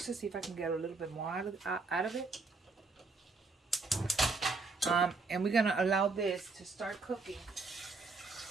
to see if I can get a little bit more out of it. And we're going to allow this to start cooking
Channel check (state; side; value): quieter; left; 4.0 dB